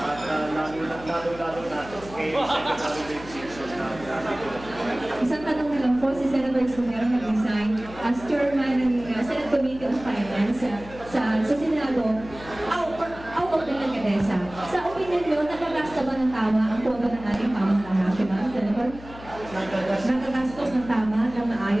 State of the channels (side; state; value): left; noise; hum, 16 dB below the sound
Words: lalo-lalo na kay Secretary Dave Simpson na isang tanong lang po, si Senator Escudero nag-resign as chairman ng Senate Committee on Finance sa Senado out of the Kadesa. Sa opinion nyo, nakagasta ba ng tama ang pondo ng ating pamahalaan national, Senator? Nakagastos ng tama ng